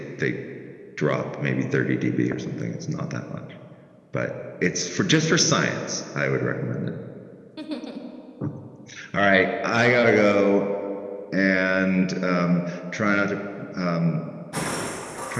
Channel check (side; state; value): both; identical; correlation 1.00